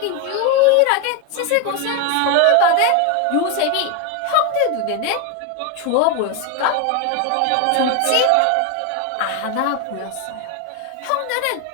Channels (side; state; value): both; different; correlation 0.01